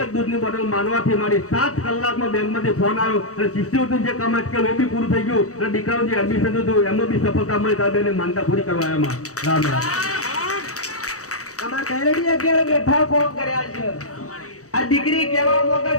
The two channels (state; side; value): late; right; 0.65 ms